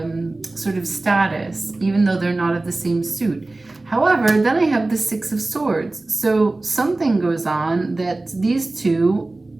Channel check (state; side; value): quieter; left; 3.0 dB